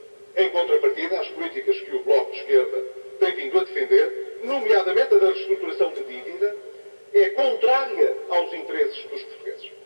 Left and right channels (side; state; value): both; inverted; correlation -1.00